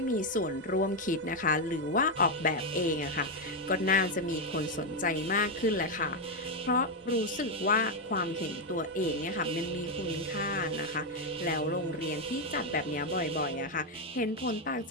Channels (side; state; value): both; normal; correlation 0.04